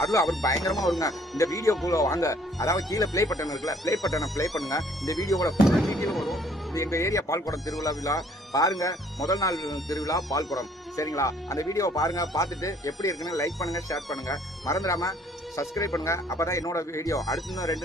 பயங்கரமா வருங்க. இந்த வீடியோக்குள்ள வாங்க, அதாவது கீழே ப்ளே பட்டன் இருக்குல்ல, ப்ளே பட்டனை ப்ளே பண்ணுங்க. இந்த வீடியோவோட ஃபுல் டீட்டெயில் வரும். இது எங்க ஏரியா பால்குடம் திருவிழா விழா பாருங்க. முதல் நாள் திருவிழா பால்குடம், சரிங்களா? அந்த வீடியோவை பாருங்க. பார்த்துட்டு எப்படி இருக்குன்னு லைக் பண்ணுங்க, ஷேர் பண்ணுங்க, மறந்துடாம சப்ஸ்கிரைப் பண்ணுங்க. அப்பதான் என்னோட வீடியோ அடுத்து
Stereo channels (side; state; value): both; normal; correlation 0.60